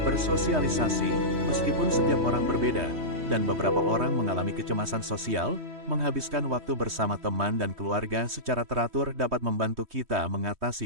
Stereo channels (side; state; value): left; late; 3.2 ms